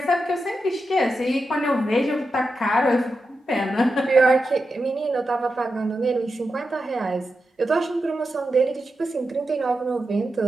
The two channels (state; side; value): normal; both; correlation 0.89